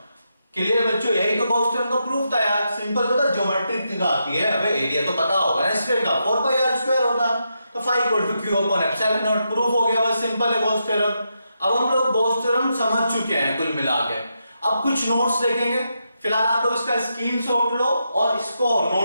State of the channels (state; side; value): inverted; both; correlation -0.84